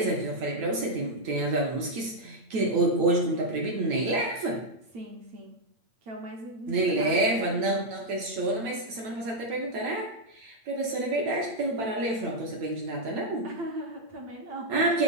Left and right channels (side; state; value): left; late; 9.0 ms